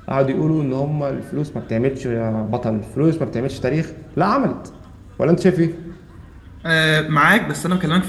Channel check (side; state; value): both; identical; correlation 1.00